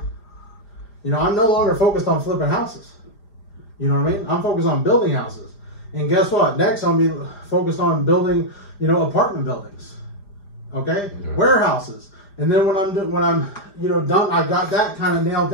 You know, I'm no longer focused on flipping houses. You know what I mean? I'm focused on building houses. And guess what? Next, I'll be focused on building, you know, apartment buildings. Okay? Yeah. Warehouses. And then when I'm, you know, done, I've got that kind of nailed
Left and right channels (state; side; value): late; right; 5.0 ms